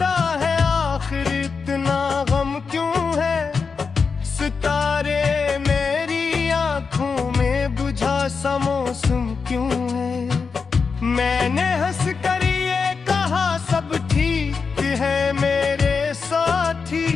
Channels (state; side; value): quieter; right; 5.2 dB